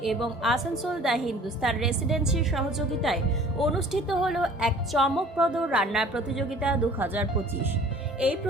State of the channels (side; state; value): both; normal; correlation 0.50